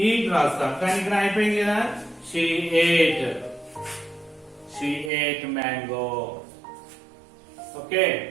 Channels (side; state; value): left; drops out; at 5.1 s